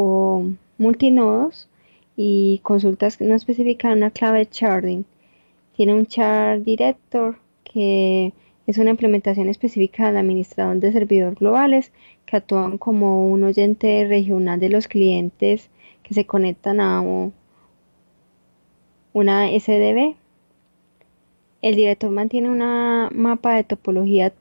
multinodos y consultas que no especifican una clave de sharding. Tiene un char director que es una implementación específica del administrador de servidores globales que actúan como un oyente regional de los clientes que se conectan a una SDB. El director mantiene una mapa de topología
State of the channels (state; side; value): inverted; both; correlation -1.00